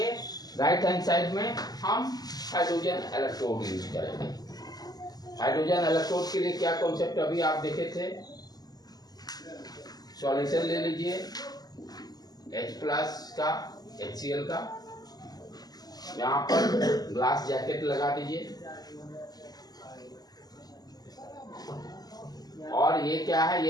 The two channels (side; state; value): right; late; 0.19 ms